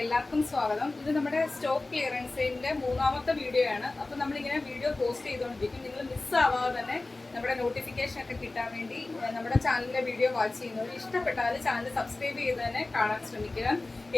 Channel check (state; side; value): quieter; right; 3.2 dB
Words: എല്ലാവർക്കും സ്വാഗതം. ഇത് നമ്മുടെ സ്റ്റോക്ക് ക്ലിയറൻസിന്റെ മൂന്നാമത്തെ വീഡിയോ ആണ്. അപ്പോൾ നമ്മളിങ്ങനെ വീഡിയോ പോസ്റ്റ് ചെയ്തുകൊണ്ടിരിക്കും. നിങ്ങൾ മിസ്സാവാതെ തന്നെ നമ്മുടെ നോട്ടിഫിക്കേഷൻ ഒക്കെ കിട്ടാൻ വേണ്ടി നമ്മുടെ ചാനലിലെ വീഡിയോ വാച്ച് ചെയ്യുന്നവർ ഇഷ്ടപ്പെട്ടാൽ ചാനൽ സബ്സ്ക്രൈബ് ചെയ്ത് തന്നെ കാണാൻ ശ്രമിക്കുക.